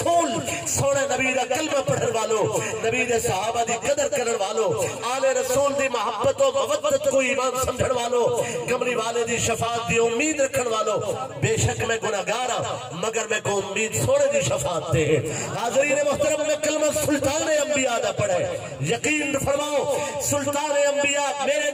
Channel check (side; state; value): both; identical; correlation 1.00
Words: سونے نبی دا کلمہ پڑھن والو نبی دے صحابہ دی قدر کرن والو آل رسول دی محبت و مودت کو ایمان سمجھن والو کمری والے دی شفاعت دی امید رکھن والو بے شک میں گناہگار ہوں مگر میں کو امید سونے دی شفاعت تے حاضرین محترم میں کلمہ سلطان انبیاء دا پڑھے یقین فرماؤ سلطان انبیاء میرے